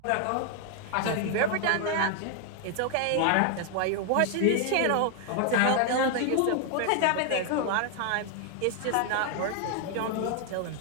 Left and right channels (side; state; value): both; different; correlation 0.00